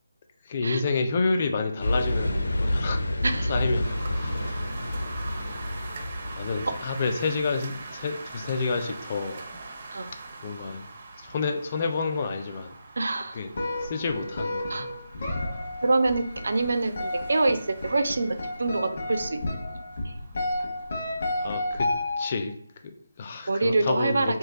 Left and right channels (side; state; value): both; inverted; correlation -0.86